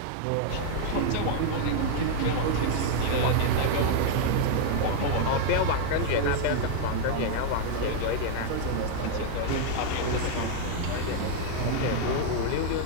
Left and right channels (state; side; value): different; both; correlation 0.01